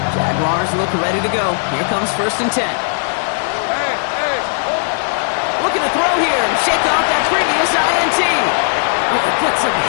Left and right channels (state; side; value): silent; right; digital silence